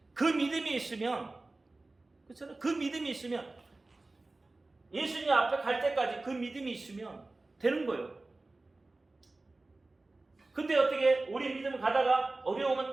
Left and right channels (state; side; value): quieter; left; 3.2 dB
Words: 그 믿음이 있으면, 그렇잖아요. 그 믿음이 있으면 예수님 앞에 갈 때까지 그 믿음이 있으면 되는 거예요. 근데 어떻게 우리 믿음 가다가 어려우면